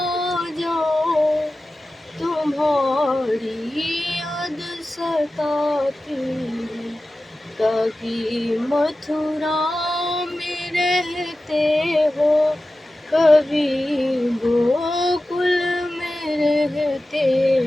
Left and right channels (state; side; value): normal; both; correlation 0.94